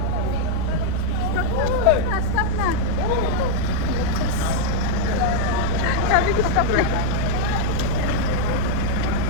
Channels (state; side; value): different; both; correlation -0.01